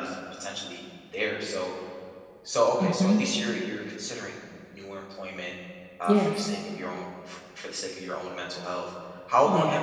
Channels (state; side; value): identical; both; correlation 1.00